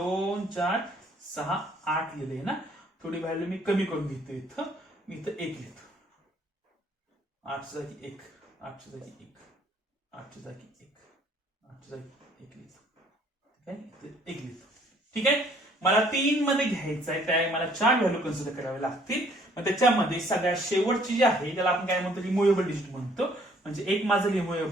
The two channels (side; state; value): both; normal; correlation 0.61